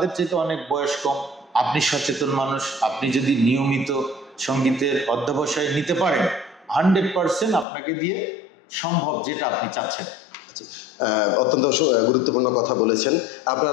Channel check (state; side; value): drops out; right; at 7.7 s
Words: চাইতে অনেক বয়স কম, আপনি সচেতন মানুষ, আপনি যদি নিয়মিত সঙ্গীতের অধ্যবসায় নিতে পারেন, 100% আপনাকে দিয়ে সম্ভব যেটা আপনি চাচ্ছেন। অত্যন্ত গুরুত্বপূর্ণ কথা বলেছেন।